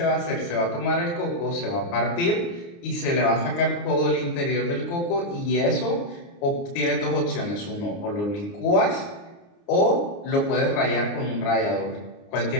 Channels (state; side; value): late; right; 29 ms